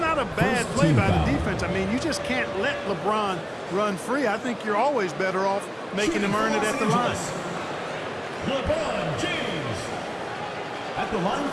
a bad play by the defense. I mean, you just can't let LeBron run free. I think you're always better off making him earn it at the line. LeBron James at the line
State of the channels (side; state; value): both; identical; correlation 1.00